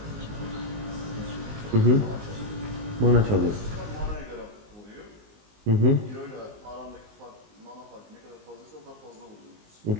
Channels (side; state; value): left; late; 19 ms